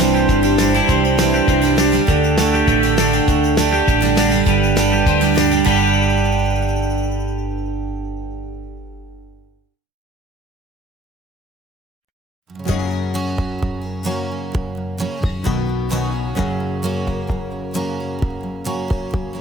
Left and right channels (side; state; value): both; normal; correlation 0.52